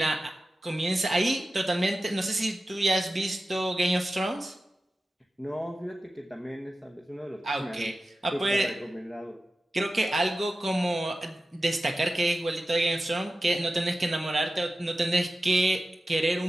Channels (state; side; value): normal; both; correlation 0.94